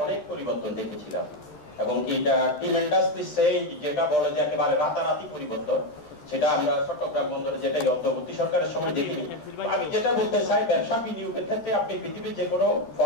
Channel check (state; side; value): late; right; 13 ms